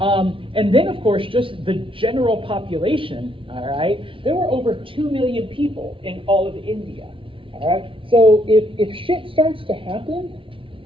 then, of course, just the general population, all right? There were over 2 million people in all of India, all right? So if shit starts to happen,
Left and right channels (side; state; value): left; late; 0.25 ms